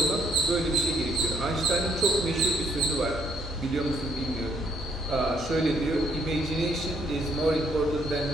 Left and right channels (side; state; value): both; normal; correlation 0.69